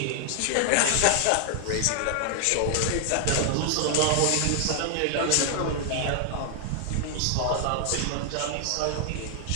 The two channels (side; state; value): both; different; correlation 0.00